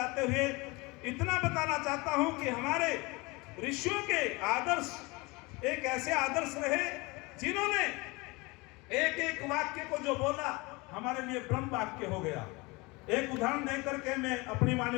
हुए इतना बताना चाहता हूं कि हमारे ऋषियों के आदर्श एक ऐसे आदर्श रहे जिन्होंने एक एक वाक्य को जो बोला हमारे लिए ब्रह्म वाक्य हो गया। एक उदाहरण देकर के मैं अपनी वाणी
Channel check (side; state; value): right; quieter; 25.0 dB